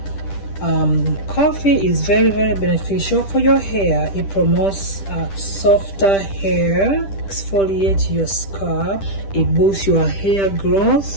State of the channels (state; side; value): late; right; 10 ms